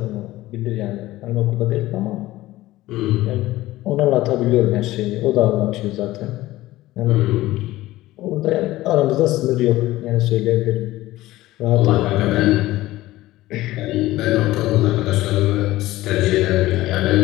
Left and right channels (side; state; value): right; quieter; 16.9 dB